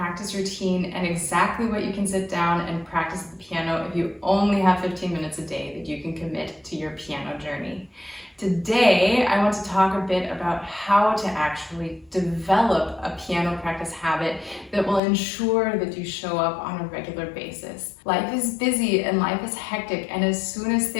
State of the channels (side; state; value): right; drops out; at 15.0 s